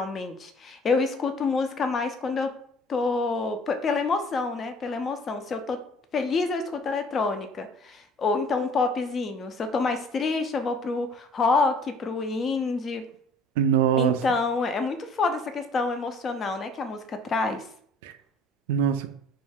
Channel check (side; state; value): both; normal; correlation 0.51